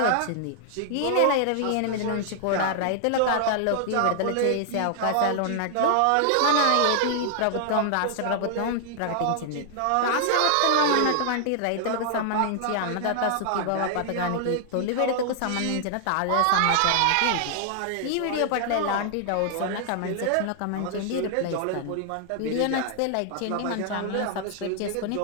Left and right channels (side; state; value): both; different; correlation 0.00